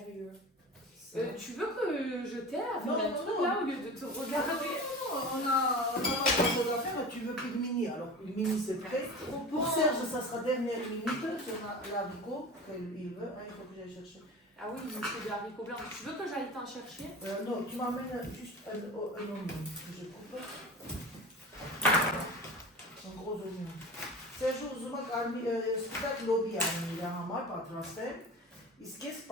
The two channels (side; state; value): both; normal; correlation 0.34